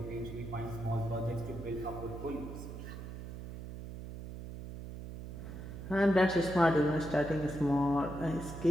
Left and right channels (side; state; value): right; noise; hum, 10 dB below the sound